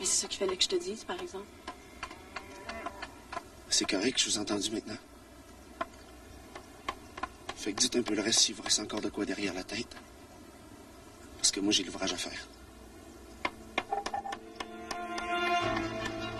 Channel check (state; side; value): identical; both; correlation 1.00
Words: c'est ça qu'il fallait que je te dise, par exemple. C'est correct, je vous ai entendu maintenant. Fait que dites un peu le reste s'il vous reste encore de quoi derrière la tête. Parce que moi, j'ai l'ouvrage à faire.